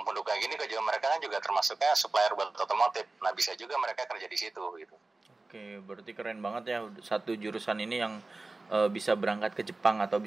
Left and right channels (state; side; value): quieter; left; 3.3 dB